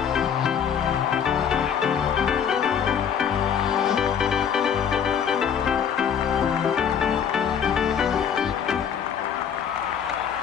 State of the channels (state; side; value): quieter; right; 7.8 dB